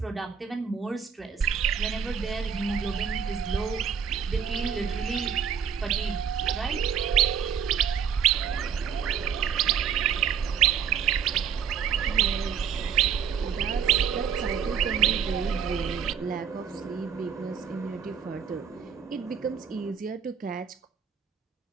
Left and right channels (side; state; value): left; quieter; 7.5 dB